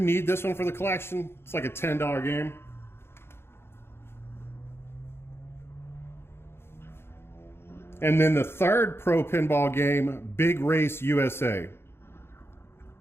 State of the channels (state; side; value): late; right; 0.12 ms